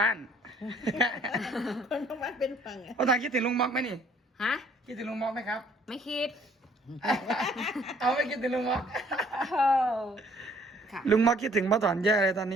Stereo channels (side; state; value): both; normal; correlation 0.60